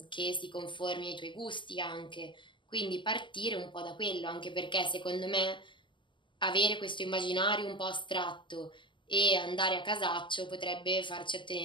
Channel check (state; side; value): late; right; 0.24 ms